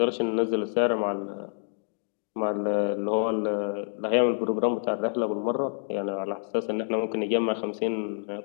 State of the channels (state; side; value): silent; right; digital silence